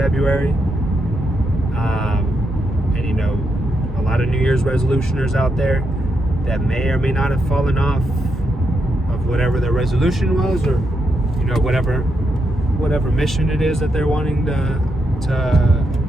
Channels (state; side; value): normal; both; correlation 0.82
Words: and a lot of New Year's resolutioners out there that may or may not have fallen off of whatever their resolution was, or whatever mission it is that they're wanting to